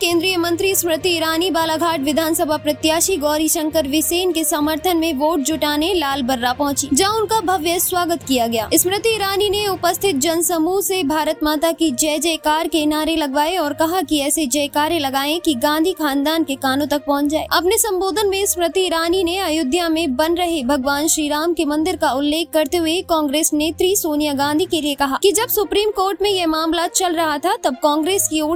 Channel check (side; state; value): both; identical; correlation 1.00